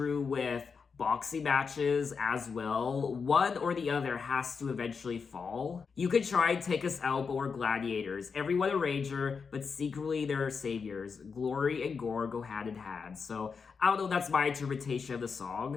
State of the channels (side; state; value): right; quieter; 5.5 dB